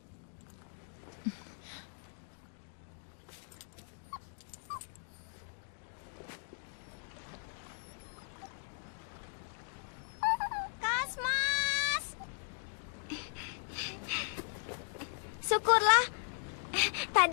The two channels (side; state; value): right; silent; digital silence